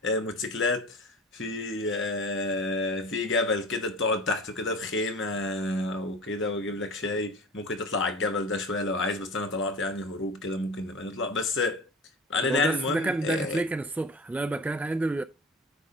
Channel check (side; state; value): both; normal; correlation 0.36